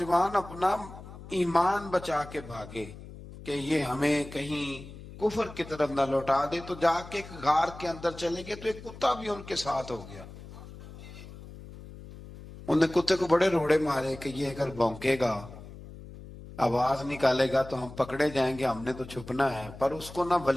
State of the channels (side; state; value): left; noise; hum, 15 dB below the sound